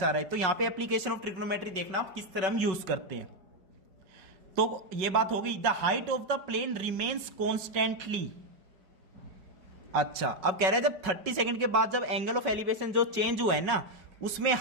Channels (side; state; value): left; late; 5.4 ms